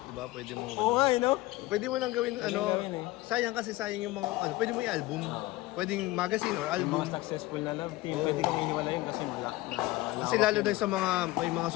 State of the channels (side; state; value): right; quieter; 18.8 dB